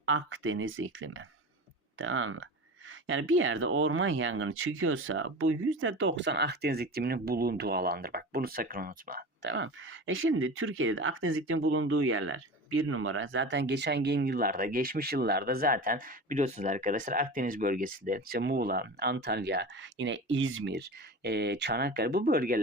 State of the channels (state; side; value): normal; both; correlation 0.31